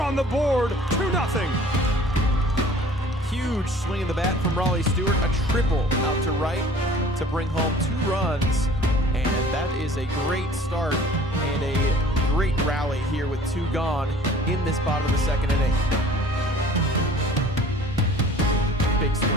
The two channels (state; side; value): normal; both; correlation 0.49